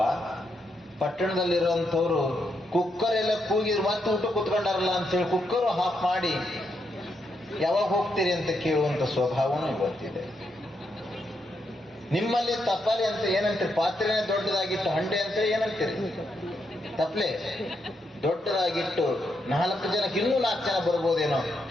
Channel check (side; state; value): both; normal; correlation 0.80